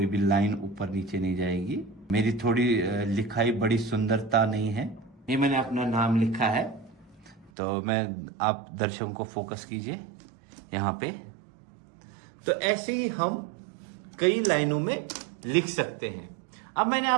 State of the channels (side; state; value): left; drops out; at 7.5 s